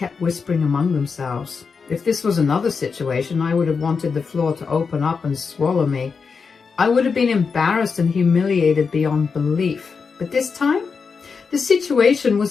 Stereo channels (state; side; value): quieter; right; 5.3 dB